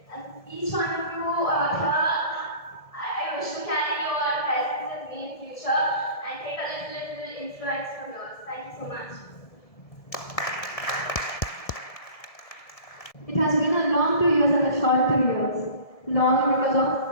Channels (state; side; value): late; right; 1.7 ms